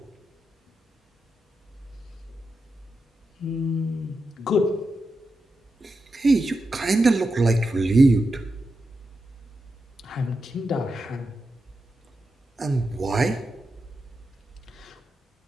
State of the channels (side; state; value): both; normal; correlation 0.88